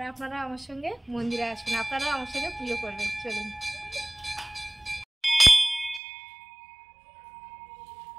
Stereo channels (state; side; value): drops out; left; at 6.0 s